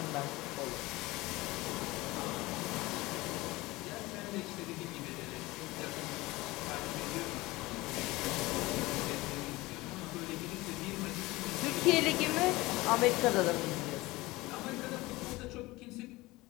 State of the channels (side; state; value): right; quieter; 20.6 dB